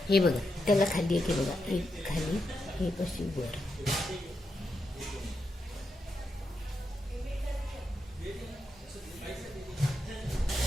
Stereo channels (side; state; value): both; normal; correlation 0.85